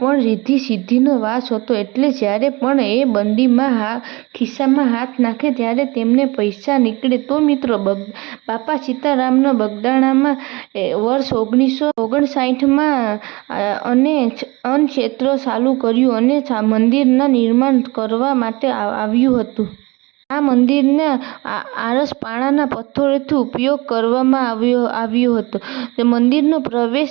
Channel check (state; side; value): quieter; left; 24.2 dB